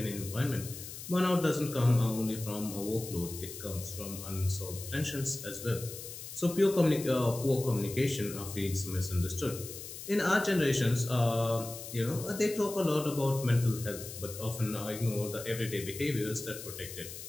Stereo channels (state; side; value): noise; left; hiss, 11 dB below the sound